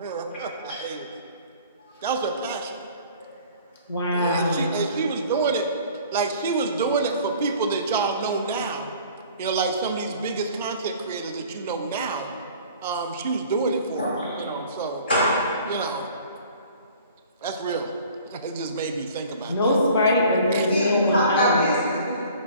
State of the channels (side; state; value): both; inverted; correlation -0.49